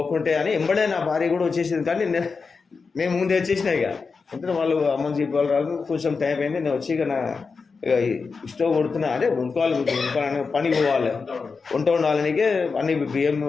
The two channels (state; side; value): quieter; right; 4.8 dB